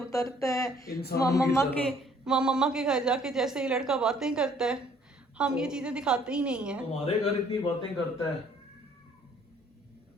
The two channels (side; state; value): both; normal; correlation 0.60